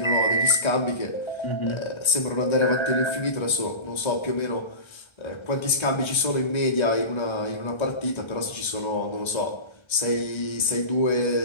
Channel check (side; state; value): right; late; 1.3 ms